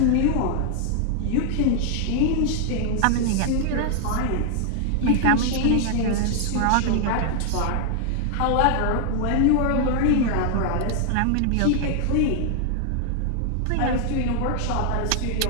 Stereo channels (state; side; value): different; both; correlation 0.00